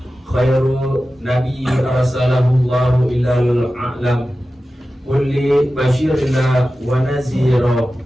khairu nabi arsalahu Allahu ilal a'lam kulli basyirina wa nazira.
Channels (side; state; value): both; normal; correlation 0.94